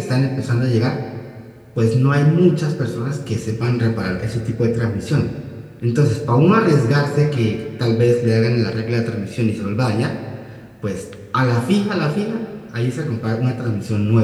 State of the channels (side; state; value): both; identical; correlation 1.00